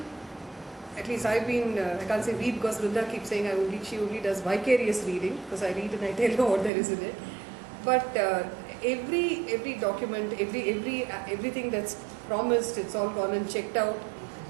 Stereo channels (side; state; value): left; drops out; at 6.7 s